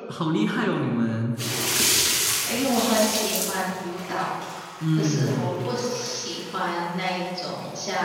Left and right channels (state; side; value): identical; both; correlation 1.00